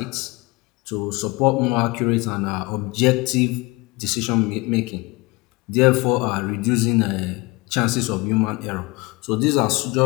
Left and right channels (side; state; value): right; quieter; 24.2 dB